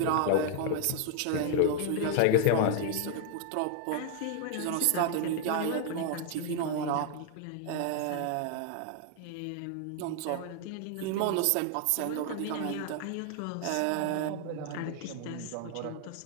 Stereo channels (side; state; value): both; different; correlation 0.00